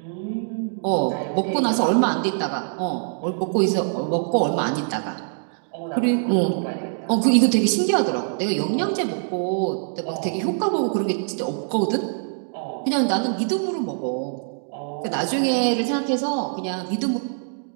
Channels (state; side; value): silent; left; digital silence